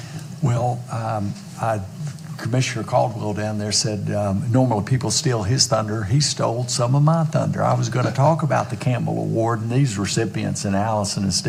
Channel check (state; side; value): identical; both; correlation 1.00